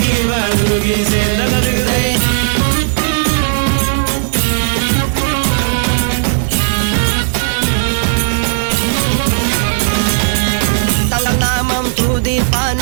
വാറുകീച്ച ദഗദിഗതൈ തങ്ങൾ നാമം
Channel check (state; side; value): silent; left; digital silence